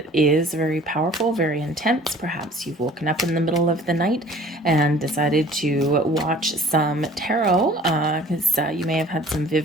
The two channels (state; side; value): normal; both; correlation 0.50